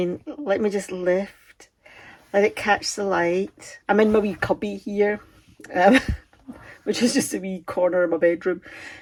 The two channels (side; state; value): both; identical; correlation 1.00